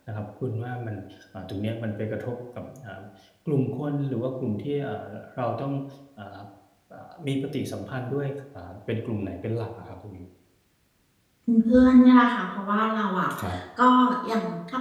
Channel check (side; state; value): both; identical; correlation 1.00